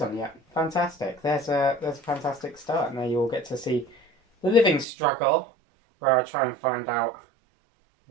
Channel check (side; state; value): left; drops out; at 4.9 s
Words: on yet. Fantastic. There's a fantastic start. Now you all get to see the living struggle, where I try and find out